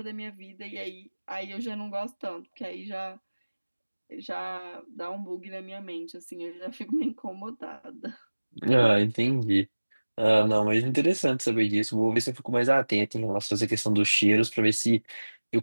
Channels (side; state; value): both; inverted; correlation -1.00